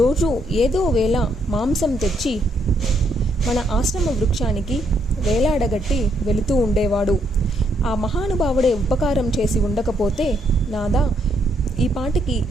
ఏదో వేళ మాంసం తెచ్చి మన ఆశ్రమ వృక్షానికి వేలాడగట్టి వెళుతూ ఉండేవాడు. ఆ మహానుభావుడే ఉపకారం చేసి ఉండకపోతే నాదా ఈ పాటికి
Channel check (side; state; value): both; normal; correlation 0.74